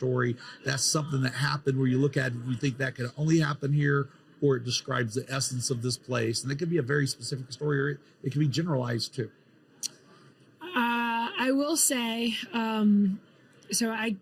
That's something that happened where you look at it and you think that could only happen here, or it describes the essence of this place. And it could be a very specific story, or it can be generalized too. I will say,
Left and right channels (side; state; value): both; identical; correlation 1.00